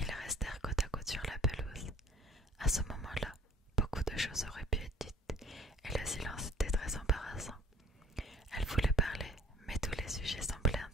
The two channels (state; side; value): normal; both; correlation 0.52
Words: ils restèrent côte à côte sur la pelouse. À ce moment-là, beaucoup de choses auraient pu être dites, et le silence était très embarrassant. Elle voulait parler, mais tous les sujets semblaient